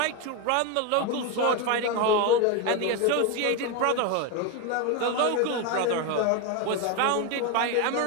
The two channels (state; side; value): different; both; correlation 0.02